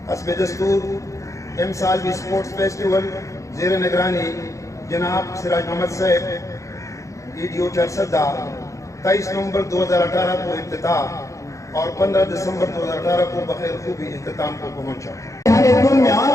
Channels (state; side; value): late; right; 0.15 ms